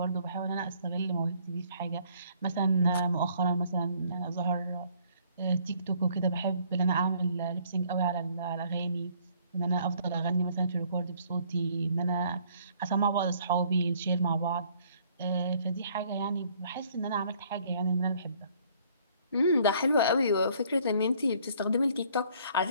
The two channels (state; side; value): inverted; both; correlation -0.61